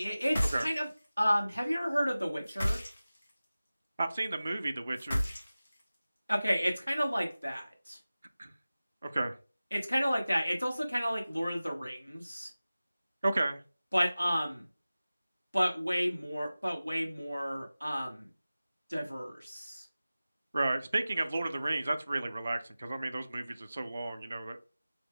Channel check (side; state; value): both; inverted; correlation -0.97